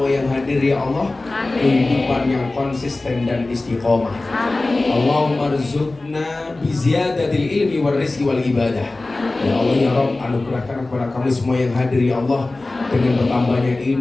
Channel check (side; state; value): right; quieter; 3.1 dB